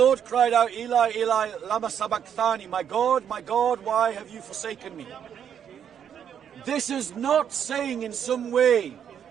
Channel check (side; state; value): left; quieter; 8.6 dB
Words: cried out, Eli, Eli, lama sabachthani, my God, why have you forsaken me? This is not saying in some way